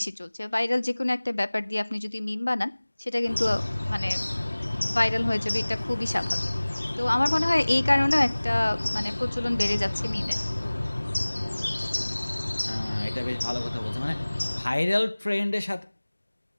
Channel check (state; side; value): inverted; both; correlation -1.00